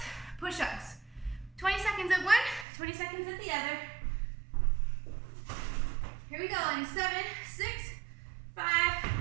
push-ups. 20 seconds at one, 20 seconds at the other. Here we go in 7, 6, 5,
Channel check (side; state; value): left; drops out; at 2.7 s